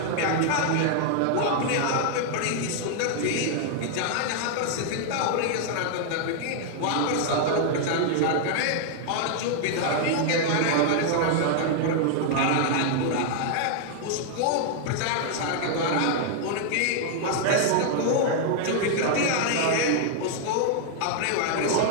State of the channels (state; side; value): different; both; correlation 0.00